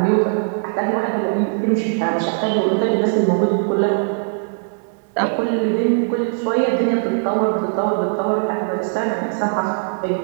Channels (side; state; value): left; silent; 66 dB below the other